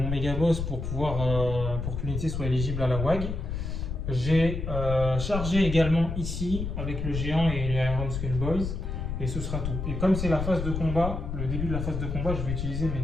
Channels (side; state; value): left; noise; rumble, 4 dB below the sound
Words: mégaboss pour pouvoir pour que l'unité soit éligible à la WAG. J'ai chargé également ici avec le géant et les Iron Skull Boys. Et ce sera tout. Et comme c'est la phase de combat, le début de la phase de combat, je vais utiliser mes